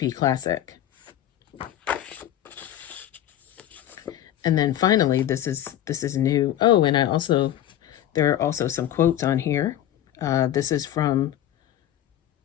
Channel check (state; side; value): quieter; right; 12.1 dB